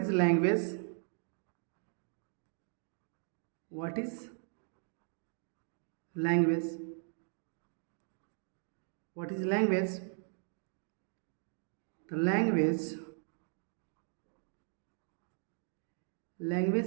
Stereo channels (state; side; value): silent; left; 53 dB below the other